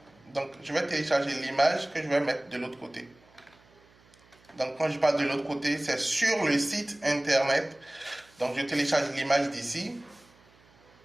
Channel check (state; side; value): noise; right; hum, 29 dB below the sound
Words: Donc, je vais télécharger l'image que je vais mettre de l'autre côté. Donc, quand je parle de l'autre côté, c'est sur le site internet. Donc, je télécharge l'image d'ici,